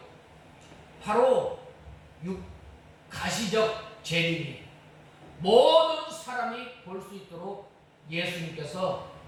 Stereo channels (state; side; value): identical; both; correlation 1.00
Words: 바로 가시적 재림이에요. 모든 사람이 볼 수 있도록 예수님께서